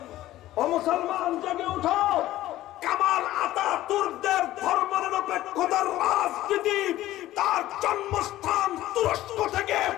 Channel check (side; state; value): right; quieter; 15.1 dB